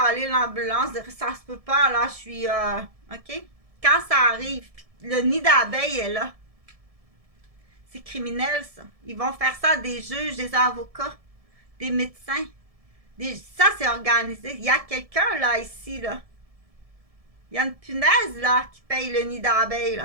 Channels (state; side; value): late; left; 1.7 ms